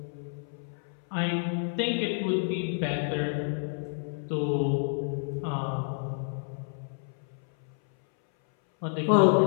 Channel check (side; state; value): right; silent; 58 dB below the other